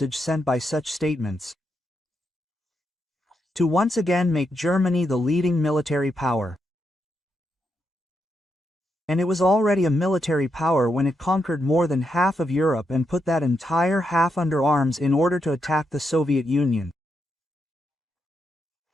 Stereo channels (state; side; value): normal; both; correlation 0.82